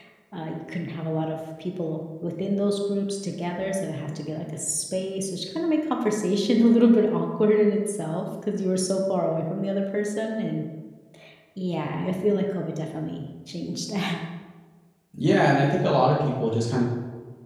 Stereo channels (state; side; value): identical; both; correlation 1.00